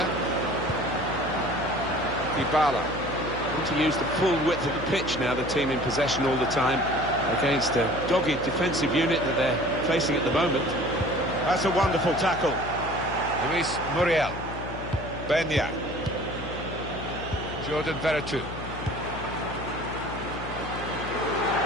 Dybala. Want to use the full width of the pitch now, the team in possession all the time, against a dogged defensive unit that they're facing at the moment. That's a wonderful tackle. Luis Muriel. Benya. Jordan Veretout.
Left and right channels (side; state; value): left; noise; hum, 9 dB below the sound